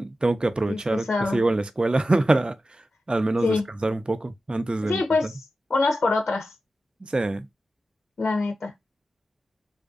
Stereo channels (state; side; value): normal; both; correlation 0.92